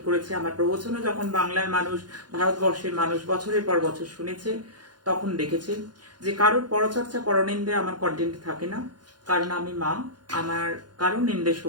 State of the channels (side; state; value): left; late; 0.70 ms